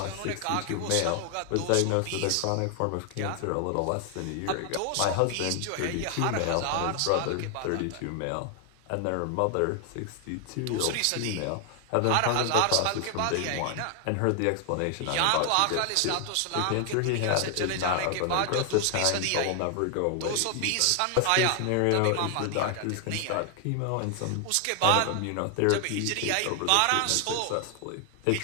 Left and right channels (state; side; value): different; both; correlation 0.00